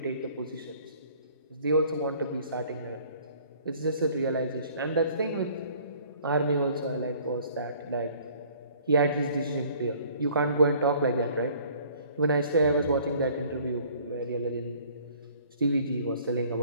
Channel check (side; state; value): both; inverted; correlation -0.55